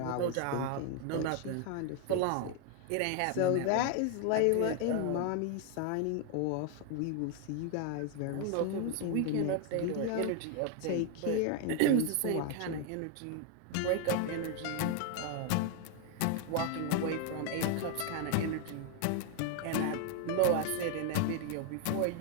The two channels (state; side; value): different; both; correlation 0.01